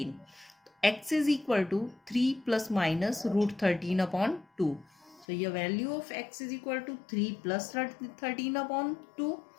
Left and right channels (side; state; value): right; drops out; at 5.2 s